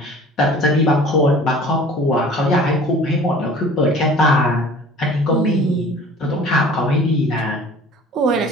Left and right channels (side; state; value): both; normal; correlation 0.46